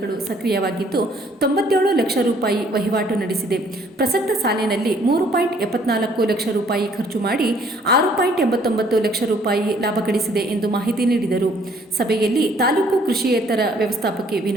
ಸಕ್ರಿಯವಾಗಿದ್ದು 97 ಲಕ್ಷ ರೂಪಾಯಿ ವಹಿವಾಟು ನಡೆಸಿದೆ. ಪ್ರಸಕ್ತ ಸಾಲಿನಲ್ಲಿ 3.74 ಲಕ್ಷ ರೂಪಾಯಿ ಖರ್ಚು ಮಾಡಿ 6.89 ಲಕ್ಷ ರೂಪಾಯಿ ಲಾಭ ಗಳಿಸಿದೆ ಎಂದು ಮಾಹಿತಿ ನೀಡಿದರು. ಸಭೆಯಲ್ಲಿ ತಾಲೂಕು ಕೃಷಿಯೇತರ ವ್ಯವಸ್ಥಾಪಕಿ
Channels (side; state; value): both; normal; correlation 0.62